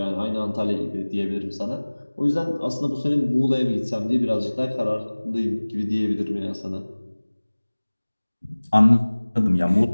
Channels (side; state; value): both; inverted; correlation -1.00